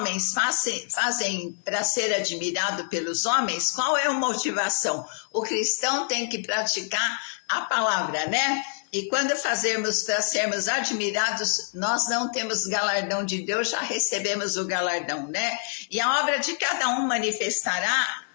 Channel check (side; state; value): right; silent; 55 dB below the other